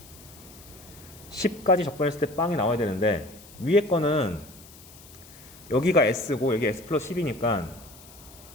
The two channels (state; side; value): noise; left; hiss, 21 dB below the sound